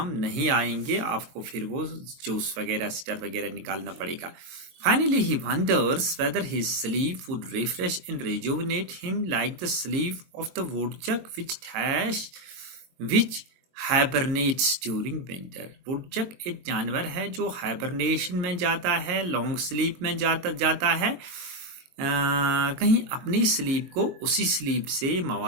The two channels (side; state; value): left; late; 22 ms